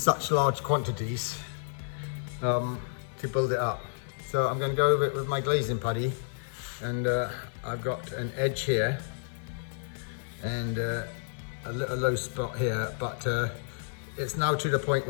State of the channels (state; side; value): silent; right; digital silence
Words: large quantities to build it up. So I'm going to go over it with my glazing putty, and I've got an edge here and a little low spot here, but it's now to the point